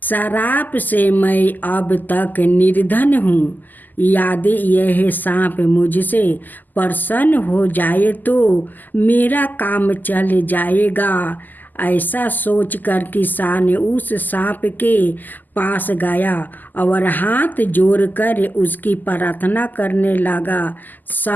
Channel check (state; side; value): late; right; 0.085 ms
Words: श्राप से मैं अब तक निर्धन हूँ। यदि यह सांप मुझसे प्रसन्न हो जाए तो मेरा काम चल जाएगा। ऐसा सोचकर किसान उस सांप के पास गया और हाथ जोड़कर उसकी प्रार्थना करने लगा।